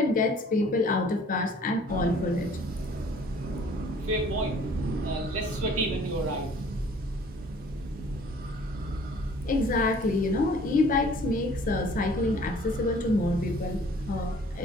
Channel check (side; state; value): both; normal; correlation 0.54